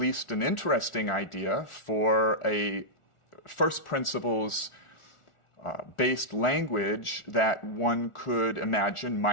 an interesting idea for a first principles based language that one could imagine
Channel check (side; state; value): right; late; 1.4 ms